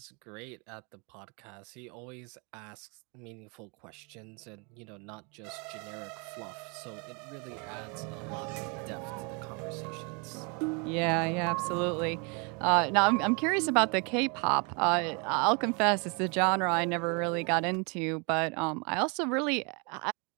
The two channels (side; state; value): left; quieter; 33.1 dB